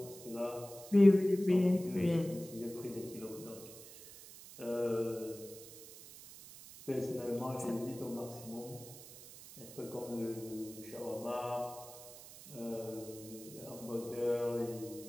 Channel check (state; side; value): noise; right; hiss, 16 dB below the sound